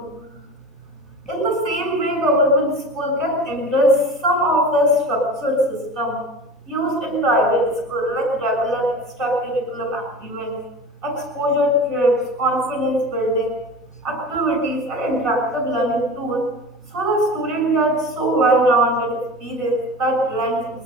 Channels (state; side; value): normal; both; correlation 0.34